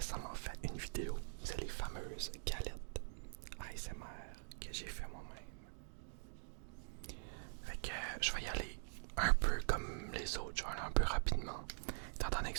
fait une vidéo. C'est les fameuses galettes ASMR que j'ai fait moi-même. Fait que je vais y aller un peu comme les autres, je vais aller un peu rapidement. Étant donné que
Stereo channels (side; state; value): left; silent; digital silence